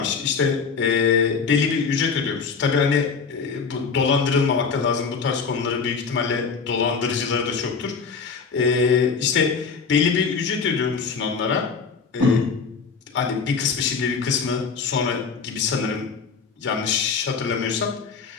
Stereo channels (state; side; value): quieter; right; 5.4 dB